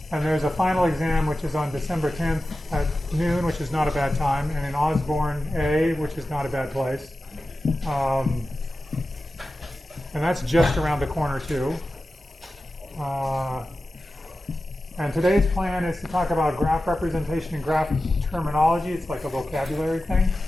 there's a final exam, which is on December 10th at noon, which is not a bad time, and in Osborne A, which is not a bad place. And that's just around the corner, too. And today's plan is to talk about graph representation and graph terminology. It's like a vocabulary thing.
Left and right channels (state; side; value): normal; both; correlation 0.94